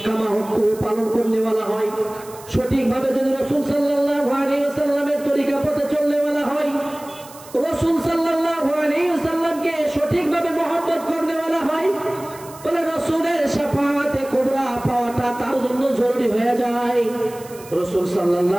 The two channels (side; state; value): right; noise; hiss, 20 dB below the sound